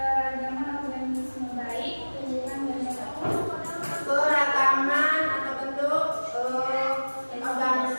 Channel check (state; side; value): inverted; both; correlation -1.00